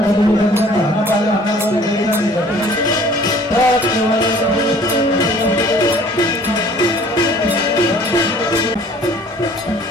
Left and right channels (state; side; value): normal; both; correlation 0.53